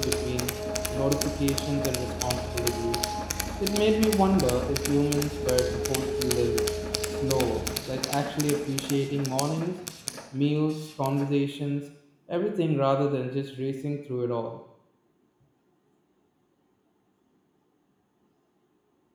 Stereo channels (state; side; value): identical; both; correlation 1.00